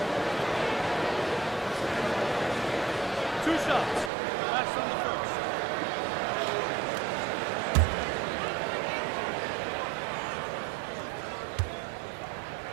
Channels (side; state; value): left; drops out; at 4.1 s